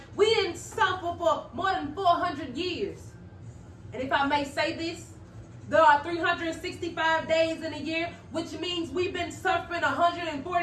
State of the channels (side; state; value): both; identical; correlation 1.00